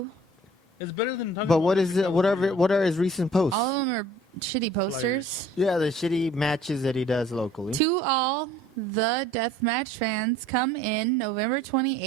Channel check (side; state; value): both; normal; correlation 0.53